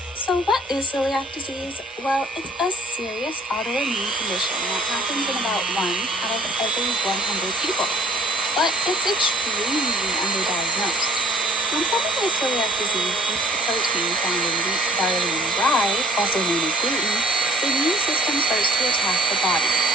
So what is celiac disease? Well, it's a serious autoimmune condition that happens in about 1 out of every 100 people. But it's extremely underdiagnosed. When someone has celiac disease eats the protein found in wheat, barley, and rye, also known as gluten, the immune system starts to attack the body.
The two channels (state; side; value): normal; both; correlation 0.54